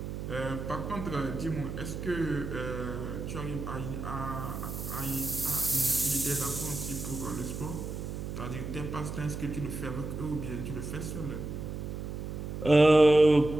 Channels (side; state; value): right; noise; hum, 6 dB below the sound